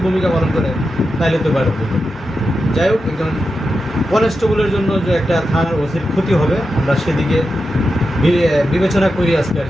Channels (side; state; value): both; normal; correlation 0.89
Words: ভূমিকা পালন করে, তাহলে তো বাইরে হবে। যাই হোক, একজন কনস্টেবলের জন্য যে একটা থানার ওসির ক্ষতি হবে, আমরা সেদিকে বিবেচনা করি। আজকে আর